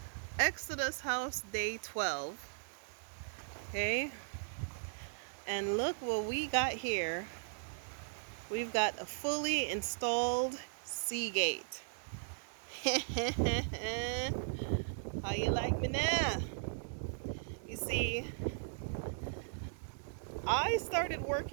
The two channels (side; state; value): left; silent; digital silence